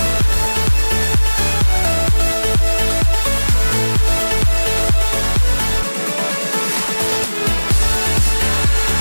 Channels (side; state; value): both; inverted; correlation -1.00